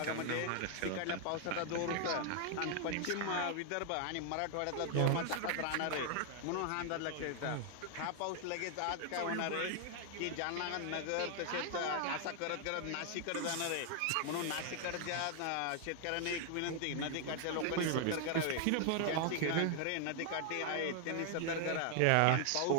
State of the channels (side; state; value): both; different; correlation 0.00